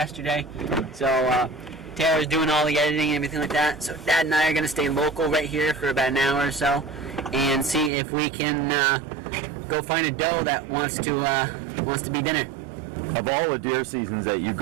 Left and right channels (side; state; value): left; drops out; at 7.9 s